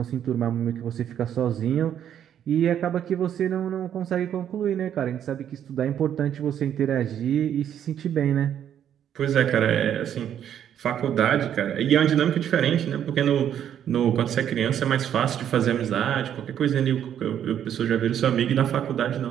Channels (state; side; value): quieter; left; 9.7 dB